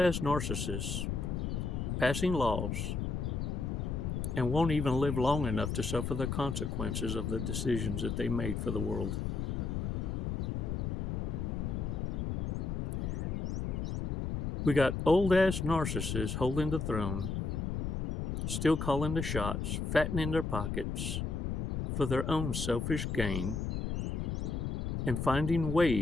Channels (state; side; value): noise; left; rumble, 2 dB below the sound